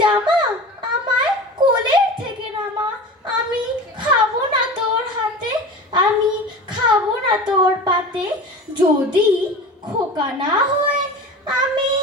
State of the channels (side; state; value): both; normal; correlation 0.34